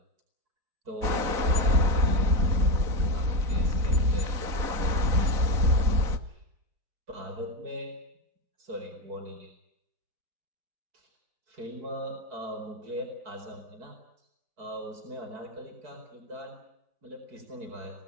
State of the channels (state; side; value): late; left; 4.1 ms